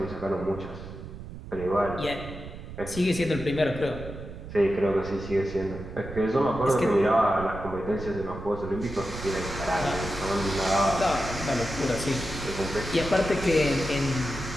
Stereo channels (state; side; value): noise; right; rumble, 12 dB below the sound